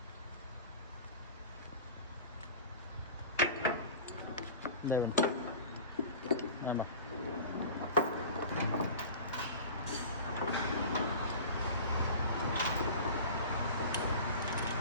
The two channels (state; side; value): inverted; both; correlation -0.37